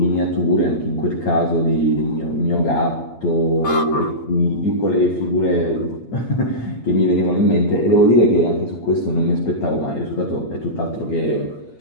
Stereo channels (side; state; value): right; late; 8.7 ms